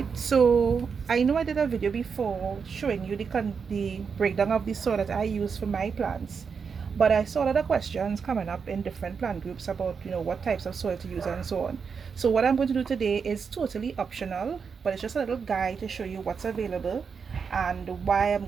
So I know I did a video before showing you the breakdown of the soil that I use for my plants, but I saw a lot of questions coming up in different plant groups about what types of soil to use and so on. So what I'm going to do today is totally optional, but it's just a little guide to show you what's available and why I'm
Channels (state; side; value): quieter; left; 5.9 dB